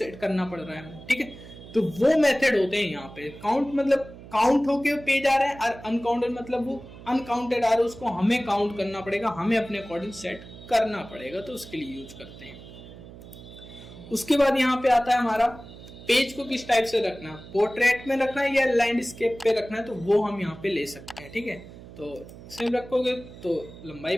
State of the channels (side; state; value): right; noise; hum, 16 dB below the sound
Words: करना पड़ रहा है, ठीक है। तो वो मेथड होते हैं यहाँ पे। काउंट मतलब काउंट होके पेज आ रहा है, और अनकाउंटेड मतलब वो अनकाउंटेड आ रहा है, उसको हमें काउंट करना पड़ेगा, हमें अपने अकॉर्डिंग सेट करना पड़ेगा, तो उसके लिए यूज करते हैं। उसके बाद यहाँ पे आता है हमारा पेज को किस टाइप से रखना, पोर्ट्रेट में रखना है या लैंडस्केप पे रखना है, तो वो हम यहाँ पे ले सकते हैं, ठीक है। तो सेम रखोगे तो लंबाई